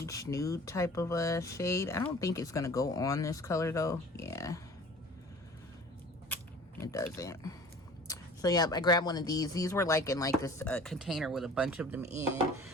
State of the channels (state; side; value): normal; both; correlation 0.45